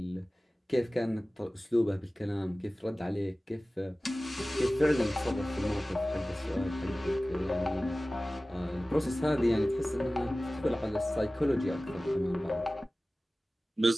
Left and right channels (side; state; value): both; normal; correlation 0.97